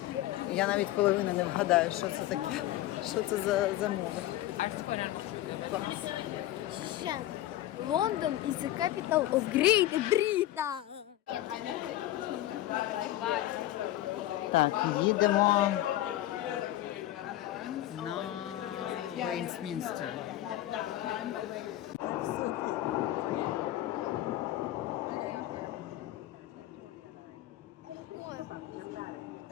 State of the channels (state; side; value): quieter; right; 14.7 dB